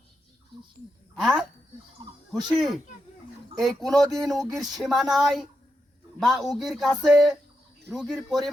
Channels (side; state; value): both; normal; correlation 0.85